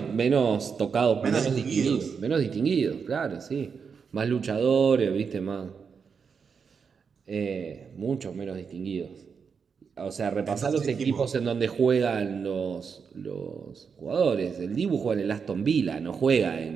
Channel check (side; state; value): left; quieter; 6.0 dB